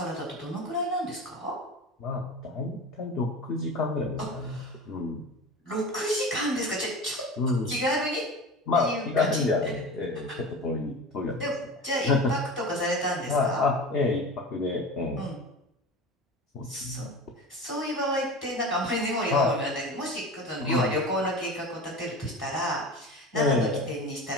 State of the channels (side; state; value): both; normal; correlation 0.31